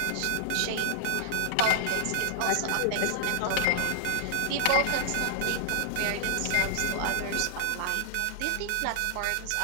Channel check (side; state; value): both; different; correlation -0.01